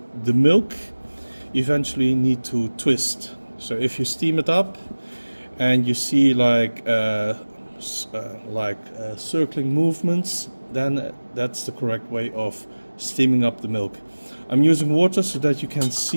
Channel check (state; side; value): inverted; both; correlation -1.00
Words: milk eventually need to twist. So if you steam it up and you see like circling movements, then that's the correct way of steaming up the milk. I'm using water so that you can